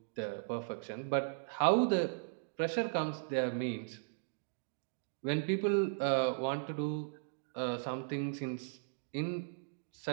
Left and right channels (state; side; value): silent; left; digital silence